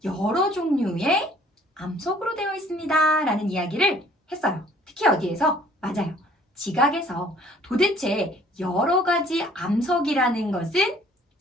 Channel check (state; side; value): normal; both; correlation 0.56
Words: 여러 종류의 암석으로 되어 있습니다 라는 이야기를 했어요. 특히 어디에서? 맞아요. 지각에서. 도대체 여러 가지 암석이라는 것은